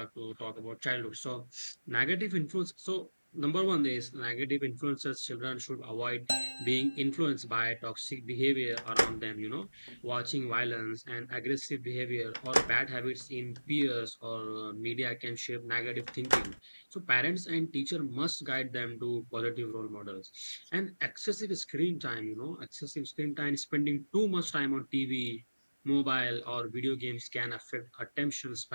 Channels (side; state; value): both; inverted; correlation -1.00